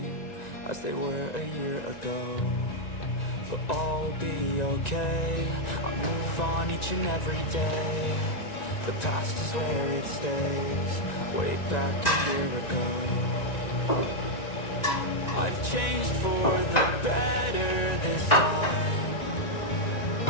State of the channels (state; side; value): late; right; 1.9 ms